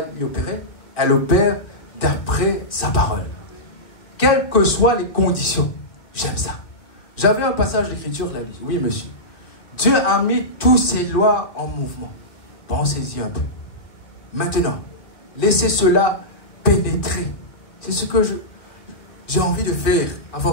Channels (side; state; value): right; late; 2.5 ms